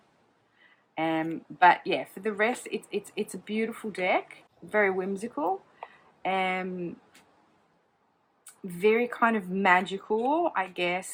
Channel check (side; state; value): both; identical; correlation 1.00